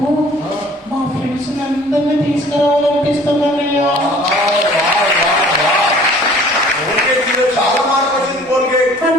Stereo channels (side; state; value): both; normal; correlation 0.51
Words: ఫ్రెండ్స్ అందరినీ తీసుకురావాలనిపిస్తుందన్నయ్యా. చాలా మార్పు వచ్చింది కోల్గేట్.